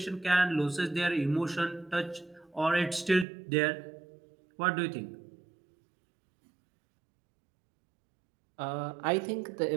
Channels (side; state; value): left; drops out; at 3.2 s